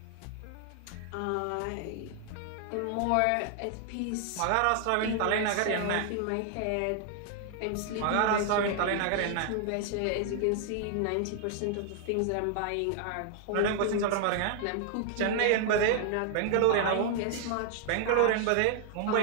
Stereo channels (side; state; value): both; different; correlation 0.00